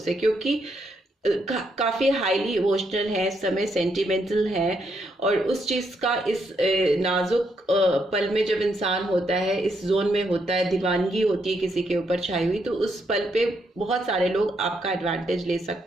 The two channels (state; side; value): normal; both; correlation 0.77